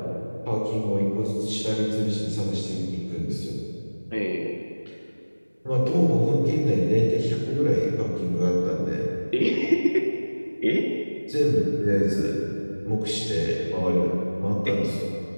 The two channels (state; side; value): inverted; both; correlation -1.00